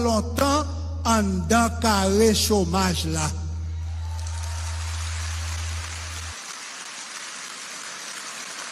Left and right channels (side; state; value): both; identical; correlation 1.00